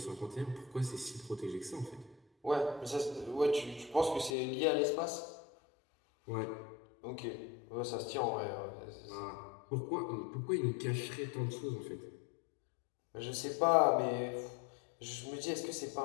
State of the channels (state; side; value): drops out; right; at 4.4 s